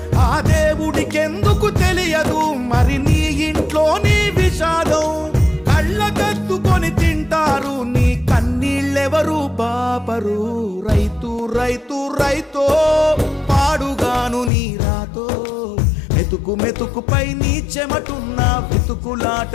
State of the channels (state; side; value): drops out; right; at 14.5 s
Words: ఆ దేవుడికెందుకు తెలియదు మరి నీ ఇంట్లో నీ విషాదం కళ్ళకద్దుకొని తింటారు నీ కన్నీళ్ళెవరు పాపరు రైతు రైతు రైతో పాడుగాను నీ రాతో మెతుకు మెతుకుపై నీ చెమటున్న వెతుకులాట